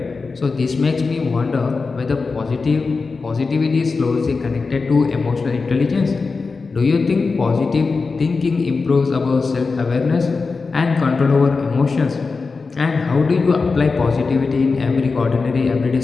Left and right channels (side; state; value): right; quieter; 4.3 dB